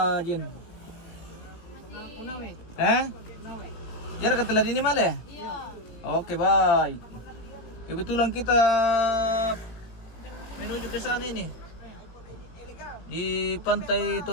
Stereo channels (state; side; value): late; right; 18 ms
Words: Jen? Hah? Jarak ke ini malah ya? Iya. Oke, baik. Kebetulan kita menuju ke sana ini. Di pantai